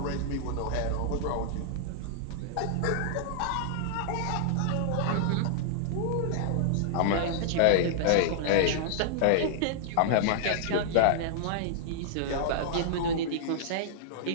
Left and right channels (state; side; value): different; both; correlation -0.02